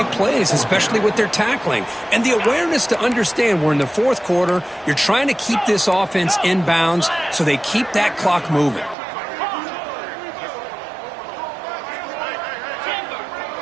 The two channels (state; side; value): drops out; left; at 9.0 s